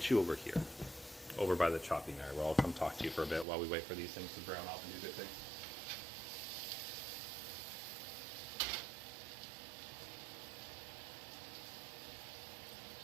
you over here, over by the chopping area, where I'll come talk to you for a bit while we wait for these things to brown off and do good things.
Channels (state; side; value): drops out; left; at 3.5 s